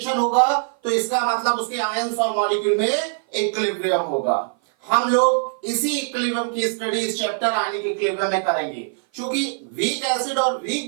होगा तो इसका मतलब उसके आयंस और मॉलिक्यूल में इक्विलिब्रियम होगा। हम लोग इसी इक्विलिब्रियम की स्टडी इस चैप्टर आयनिक इक्विलिब्रियम में करेंगे। क्योंकि वीक एसिड और weak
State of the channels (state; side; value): silent; left; 56 dB below the other